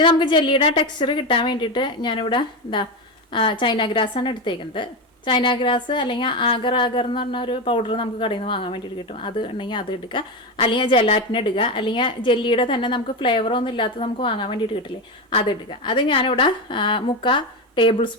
നമുക്ക് ജെല്ലിയുടെ ടെക്സ്ചർ കിട്ടാൻ വേണ്ടിയിട്ട് ഞാനിവിടെ ചൈന ഗ്രാസാണ് എടുത്തേക്കുന്നത്. ചൈന ഗ്രാസ് അല്ലെങ്കിൽ ആഗർ എന്ന് പറഞ്ഞ ഒരു പൗഡർ നമുക്ക് കടയിൽ നിന്ന് വാങ്ങാൻ വേണ്ടിയിട്ട് കിട്ടും. അത് ഉണ്ടെങ്കിൽ അത് എടുക്കുക, അല്ലെങ്കിൽ ജെലാറ്റിൻ എടുക്കുക, അല്ലെങ്കിൽ ജെല്ലിയുടെ തന്നെ നമുക്ക് ഫ്ലേവറൊന്നും ഇല്ലാത്ത നമുക്ക് വാങ്ങാൻ വേണ്ടിയിട്ട് കിട്ടില്ലേ, അത് എടുക്കുക. അത് ഞാനിവിടെ 3/4 ടേബിൾ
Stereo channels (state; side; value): normal; both; correlation 0.16